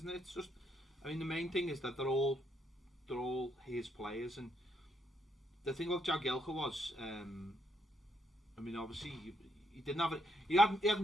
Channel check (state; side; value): normal; both; correlation 0.75